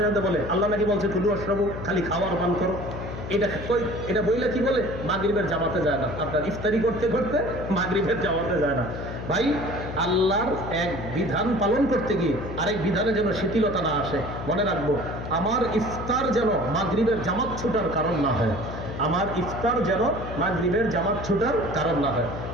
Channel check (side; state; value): left; noise; hum, 8 dB below the sound